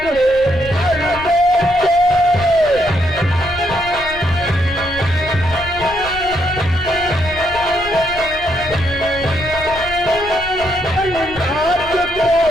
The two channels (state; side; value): noise; left; rumble, 15 dB below the sound